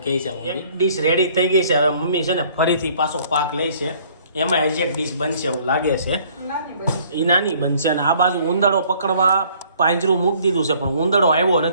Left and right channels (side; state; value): both; inverted; correlation -0.58